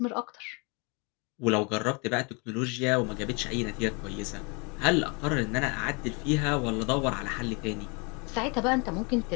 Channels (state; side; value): quieter; right; 31.5 dB